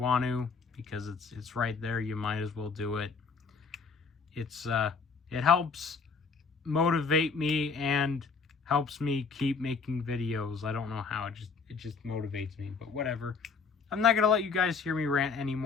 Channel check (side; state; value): right; quieter; 5.1 dB